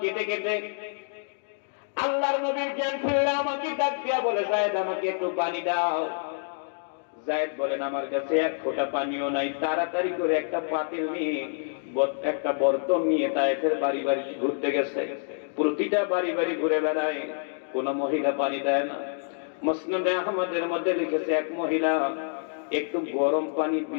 কেটে কেটে। আল্লাহর নবীর জ্ঞান ফিরলে আমাকে ডাক দিয়া বলে, যায়েদ আমাকে একটু পানি দাও। যায়েদ বলেন, আমার কাছে 1 ফোঁটা পানিও নাই। তাড়াতাড়ি করে একটা পাতিল নিয়ে, একটা বর্তন নিয়ে তায়েফের বাড়ি বাড়ি ঘুরতে গেছে। প্রতিটা বাড়ি বাড়ি ঘুরে বেড়ায়, কোন মহিলা পানি দেয় না। মুসনাদে আহমদের মধ্যে লিখেছে, এক মহিলা একটু গরম পানি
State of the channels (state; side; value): silent; right; digital silence